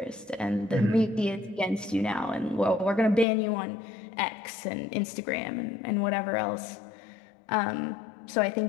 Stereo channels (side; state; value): right; drops out; at 3.2 s